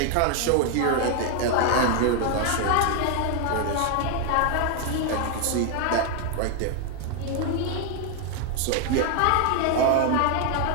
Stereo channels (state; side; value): different; both; correlation 0.00